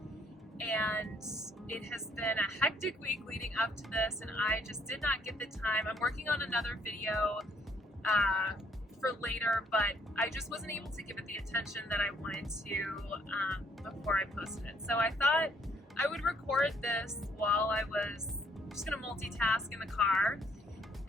And it has been a hectic week leading up to this, and I just did not get the time. I'm working on another video for later, but I just wasn't able to give it the attention that I wanted to before I posted it. So I thought I would record this while I was just gonna multitask in the car.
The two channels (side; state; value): both; normal; correlation 0.67